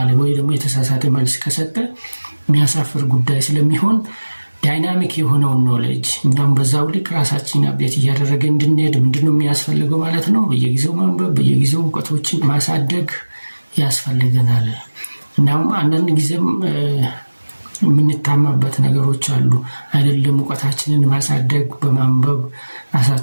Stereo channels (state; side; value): inverted; both; correlation -1.00